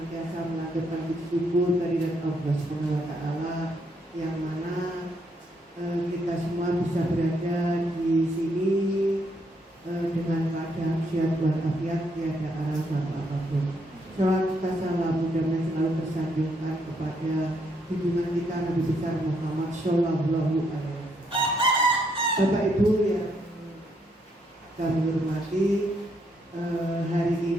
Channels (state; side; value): normal; both; correlation 0.74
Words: mengaturkan syukur kehadirat Allah Subhanahu wa taala yang mana kita semua bisa berada di sini dengan keadaan sehat walafiat, tiada alasan apapun. Salam salam mudah-mudahan selalu tersanjungkan kepada junjungan kita Nabi besar Muhammad Shallallahu Alaihi Wasallam. Bapak Ibu yang kami hormati, hari